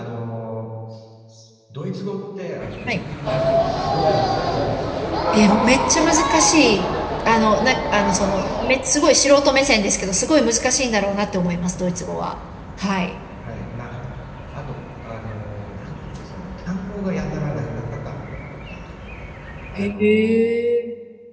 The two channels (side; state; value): both; identical; correlation 1.00